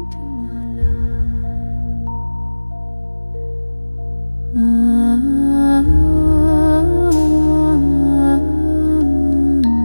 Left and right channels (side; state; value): both; inverted; correlation -1.00